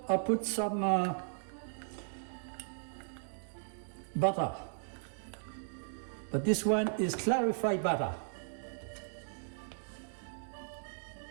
I put some butter. But this one is clarified butter.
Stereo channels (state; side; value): silent; left; digital silence